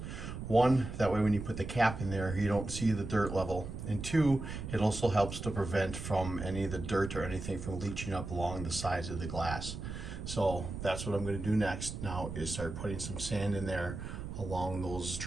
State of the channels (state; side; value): noise; right; rumble, 7 dB below the sound